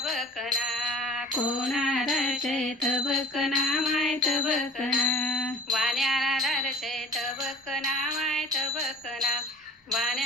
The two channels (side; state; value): both; normal; correlation 0.46